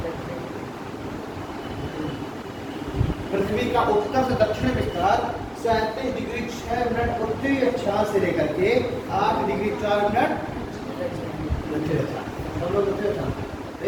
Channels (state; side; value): identical; both; correlation 1.00